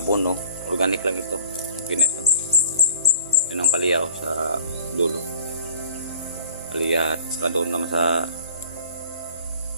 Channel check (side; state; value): both; inverted; correlation -0.49